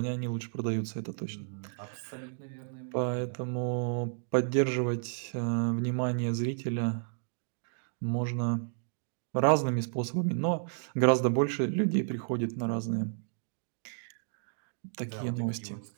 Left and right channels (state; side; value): silent; left; digital silence